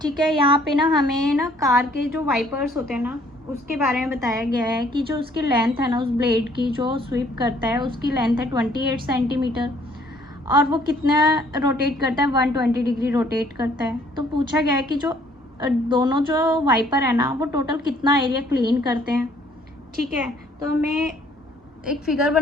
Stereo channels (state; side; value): normal; both; correlation 0.61